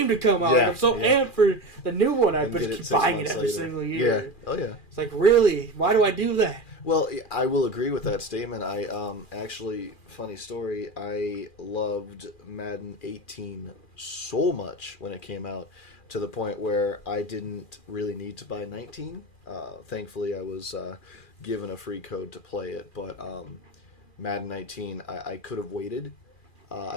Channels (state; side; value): late; right; 2.4 ms